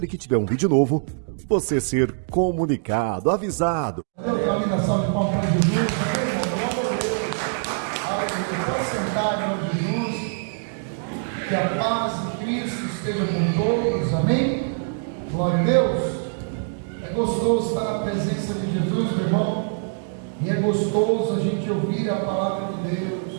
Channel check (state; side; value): silent; left; digital silence